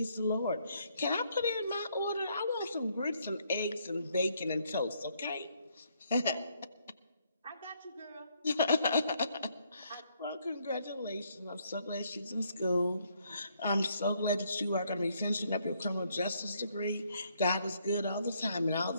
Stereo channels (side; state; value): both; inverted; correlation -0.71